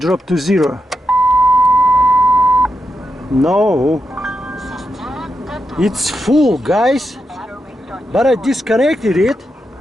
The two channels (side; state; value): both; normal; correlation 0.85